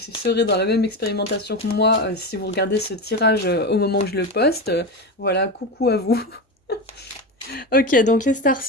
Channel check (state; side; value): normal; both; correlation 0.20